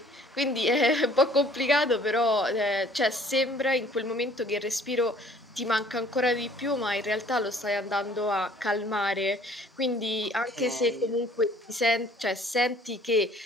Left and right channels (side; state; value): both; normal; correlation 0.55